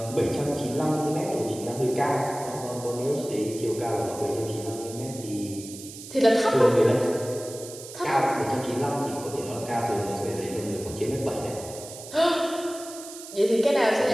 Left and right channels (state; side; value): noise; right; hiss, 14 dB below the sound